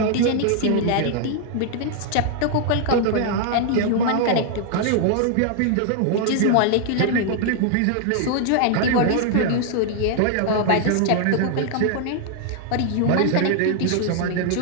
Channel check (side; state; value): both; different; correlation 0.00